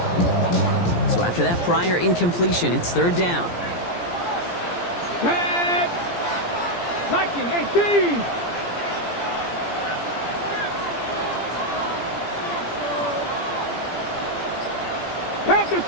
So after that prior incompletion, it's third down. Tag! Viking 18! Panther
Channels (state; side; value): late; right; 17 ms